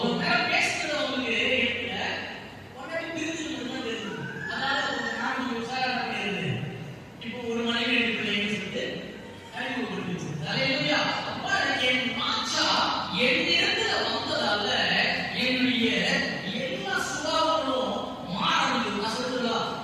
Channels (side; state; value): both; identical; correlation 1.00